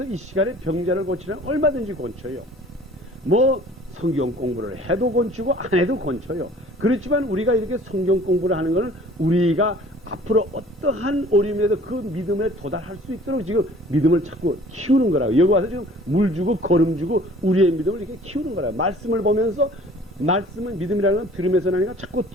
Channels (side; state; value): both; normal; correlation 0.51